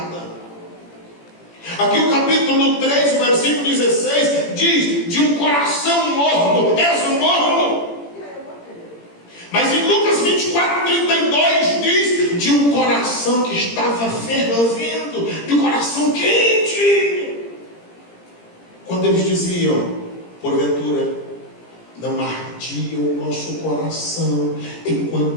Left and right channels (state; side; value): late; right; 17 ms